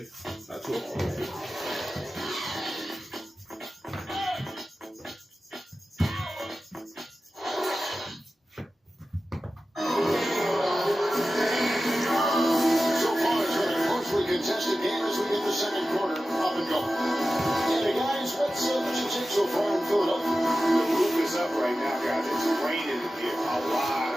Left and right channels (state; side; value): normal; both; correlation 0.94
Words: Not too long. Contested game as we get the second quarter up and going. And guys, what's you take so far in Philadelphia? The roof is up right now, guys. It's raining here. A lot